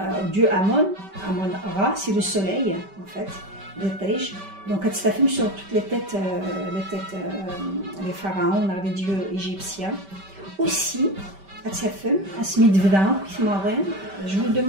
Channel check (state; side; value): late; left; 5.2 ms